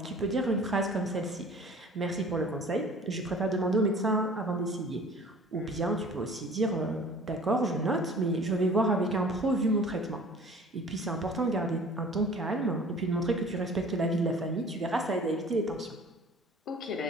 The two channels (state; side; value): normal; both; correlation 0.47